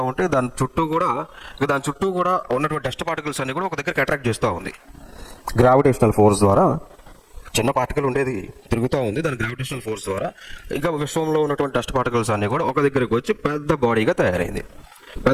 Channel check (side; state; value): both; identical; correlation 1.00